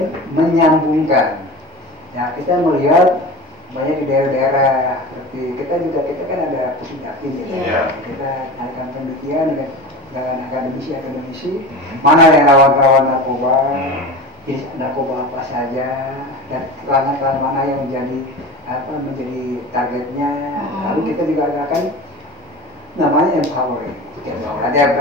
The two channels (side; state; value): both; normal; correlation 0.31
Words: menyambungkan. Ya kita melihat banyak di daerah-daerah seperti kita kan ada pusdakti gitu. Kita adakan penelitian dengan akademisi mana yang rawan-rawan narkoba, jenis narkoba apa saja dan pelanggan mana yang menjadi targetnya. Lalu kita juga akan namanya empowering. Ada